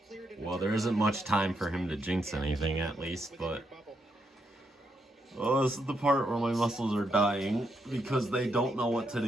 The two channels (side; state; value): both; normal; correlation 0.80